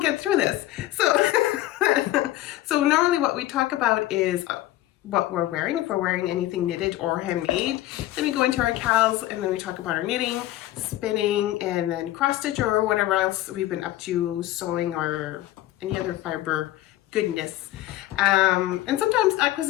through this. So normally what we talk about is what we're wearing, if we're wearing anything knitted or handmade. Then we go into our cows and then we talk about our knitting, spinning, and then cross stitch or whatever else we've been up to, sewing or any other fiber goodness. And sometimes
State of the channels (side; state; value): right; quieter; 15.5 dB